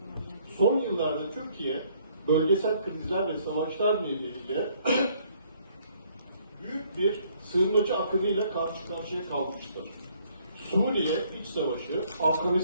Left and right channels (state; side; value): inverted; both; correlation -0.64